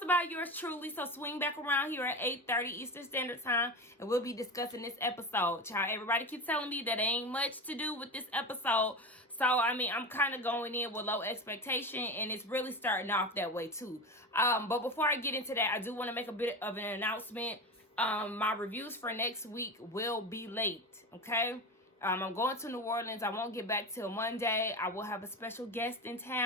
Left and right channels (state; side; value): normal; both; correlation 0.24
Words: by yours truly. So swing back around here at 8:30 Eastern Standard Time, and we'll be discussing this episode. Child, everybody keeps telling me that ain't much to do with this episode. So, I mean, I'm kind of going in with low expectation, and it's really starting off that way, too. But before I get into that, I do want to make a bit of an announcement. My reviews for next week will be late, okay? I'm going to New Orleans. I won't get back till Monday. I will have a special guest in